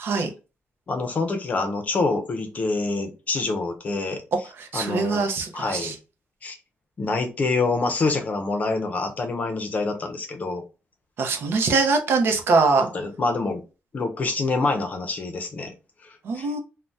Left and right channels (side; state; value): both; normal; correlation 0.61